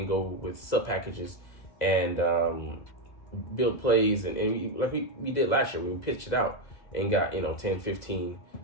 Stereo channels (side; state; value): right; late; 2.0 ms